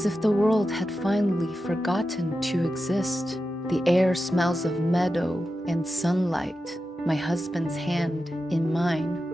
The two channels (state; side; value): normal; both; correlation 0.91